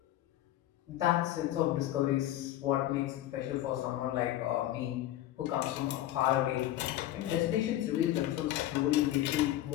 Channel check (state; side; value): quieter; right; 13.8 dB